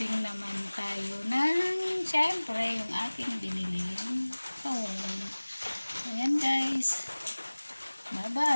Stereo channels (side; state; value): both; inverted; correlation -1.00